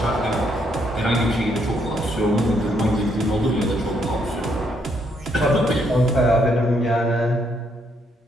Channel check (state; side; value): normal; both; correlation 0.73